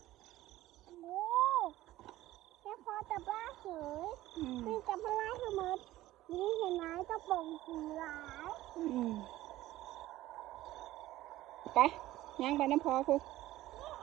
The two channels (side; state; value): left; quieter; 15.7 dB